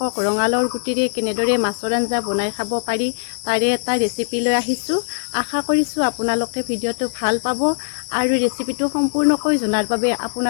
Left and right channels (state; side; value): silent; right; 64 dB below the other